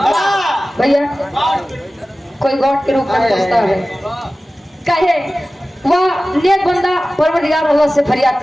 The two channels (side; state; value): both; normal; correlation 0.96